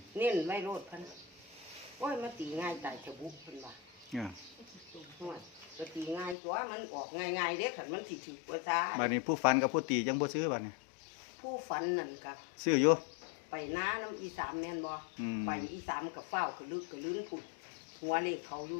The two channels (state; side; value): drops out; right; at 6.4 s